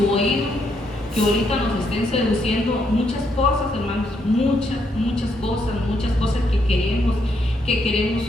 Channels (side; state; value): both; normal; correlation 0.76